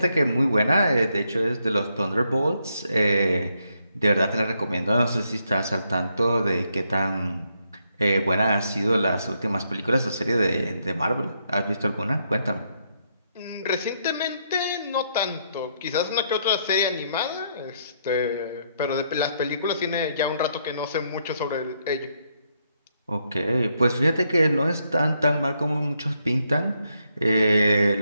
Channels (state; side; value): inverted; both; correlation -0.77